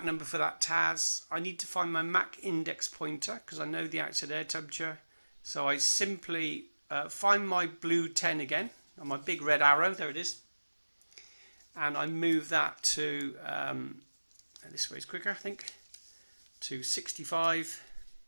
number for that TAS, I need to find my Mach index pointer, because I know the outside air temperature. So I simply find my blue 10 again, on my big red arrow, there it is. And I move that to, this way is quicker I think, to 65.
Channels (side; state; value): both; inverted; correlation -1.00